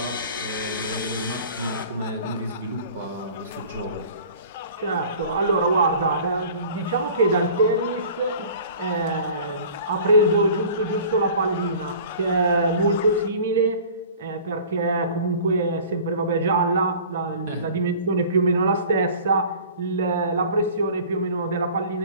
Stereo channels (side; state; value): both; inverted; correlation -0.45